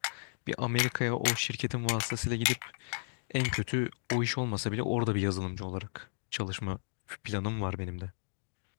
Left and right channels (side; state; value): right; silent; digital silence